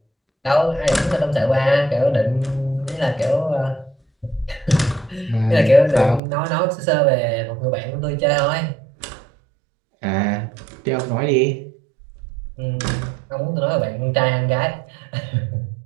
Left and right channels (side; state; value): left; drops out; at 6.2 s